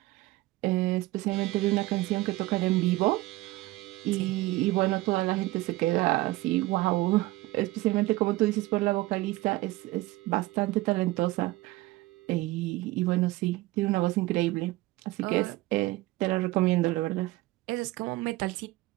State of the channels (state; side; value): quieter; left; 19.0 dB